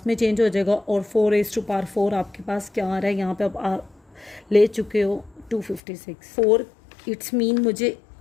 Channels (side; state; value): right; drops out; at 5.8 s